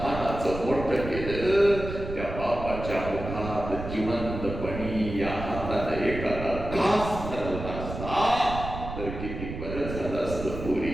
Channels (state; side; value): noise; right; rumble, 8 dB below the sound